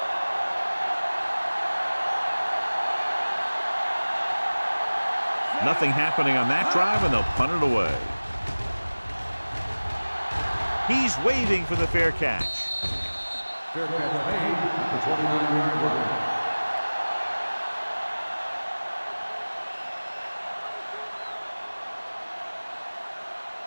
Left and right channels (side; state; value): both; inverted; correlation -1.00